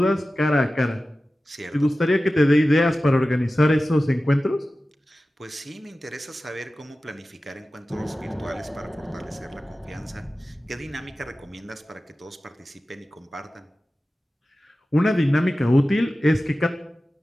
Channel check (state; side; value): normal; both; correlation 0.95